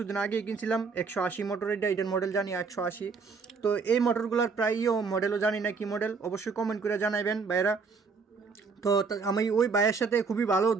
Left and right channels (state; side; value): quieter; left; 4.9 dB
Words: আগেই কিনছিলাম, 180 মোটর। এটার মডেল জানি 180। তো এই মোটরগুলোর প্রায়ও মডেলও জানি না কি মডেল, অবশ্যই কমেন্ট করে জানাবেন ভাইয়েরা। তো আমি ওই ভাইয়ের সাথে খুবই ভালো,